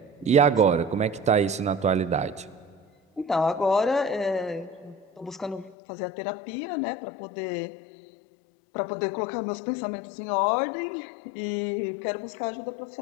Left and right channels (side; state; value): right; drops out; at 5.8 s